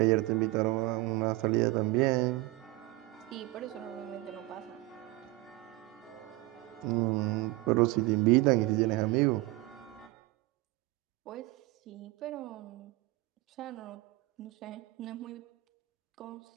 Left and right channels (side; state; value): left; quieter; 20.3 dB